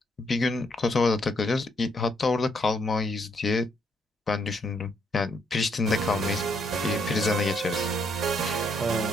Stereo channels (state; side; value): normal; both; correlation 0.72